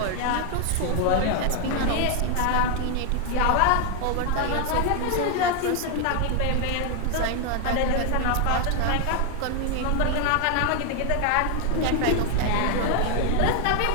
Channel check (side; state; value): both; different; correlation 0.00